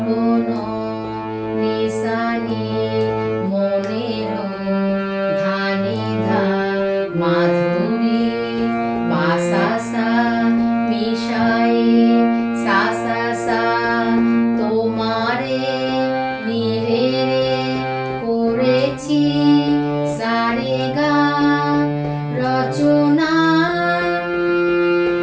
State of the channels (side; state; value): both; identical; correlation 1.00